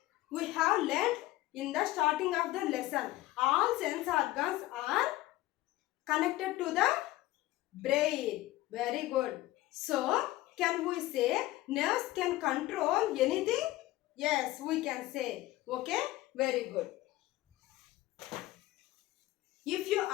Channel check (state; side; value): quieter; right; 17.0 dB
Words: We have learned in the starting of the lesson. All sense organs are connected to the brain. Very good. So, can we say nerves can control anything? Yes, we can say. Okay? Very good. If you